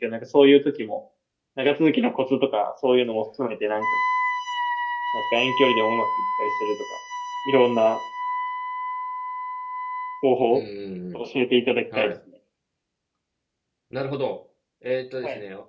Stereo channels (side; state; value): both; identical; correlation 1.00